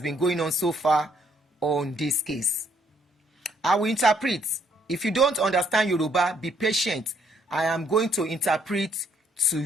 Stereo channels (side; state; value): both; normal; correlation 0.68